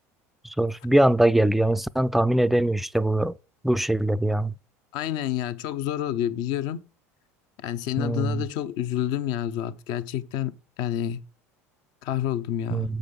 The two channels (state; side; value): normal; both; correlation 0.75